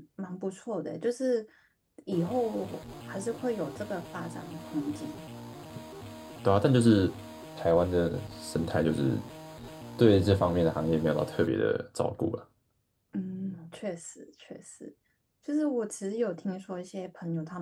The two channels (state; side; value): identical; both; correlation 1.00